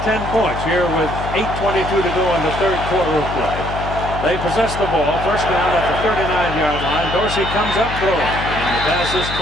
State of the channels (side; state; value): left; noise; hum, 7 dB below the sound